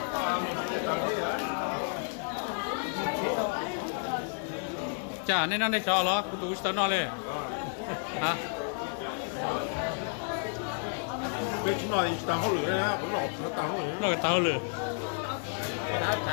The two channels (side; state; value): right; silent; 57 dB below the other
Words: chả nên nó để cho nó cũng đủ cho nó lên hả bây giờ nói tao không lừa nữa vẫn nói tao không lừa nó cái tao lừa